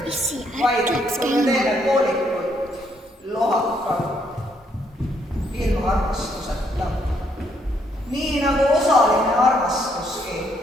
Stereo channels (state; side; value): normal; both; correlation 0.72